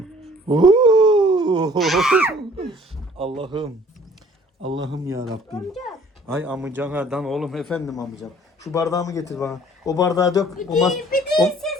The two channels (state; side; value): normal; both; correlation 0.54